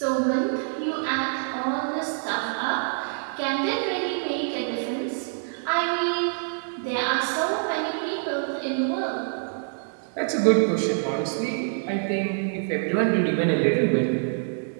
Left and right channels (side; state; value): left; silent; digital silence